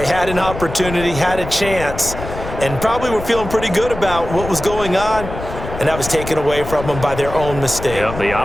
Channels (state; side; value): noise; left; rumble, 9 dB below the sound